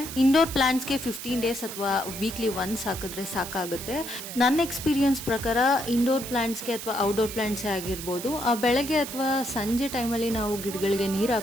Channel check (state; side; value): noise; right; hiss, 9 dB below the sound